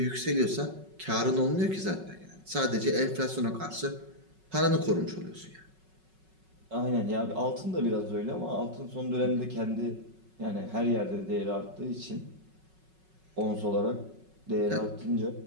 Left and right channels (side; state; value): left; late; 5.4 ms